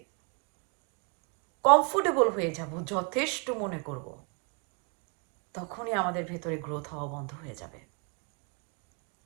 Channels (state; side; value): quieter; left; 35.4 dB